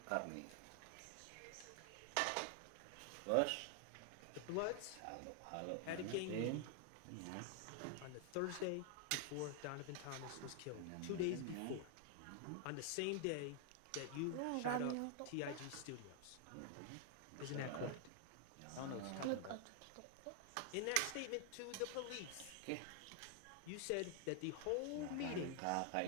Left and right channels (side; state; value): both; different; correlation 0.00